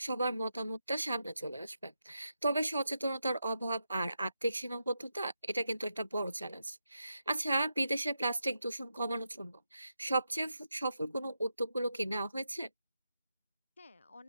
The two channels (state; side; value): inverted; both; correlation -0.86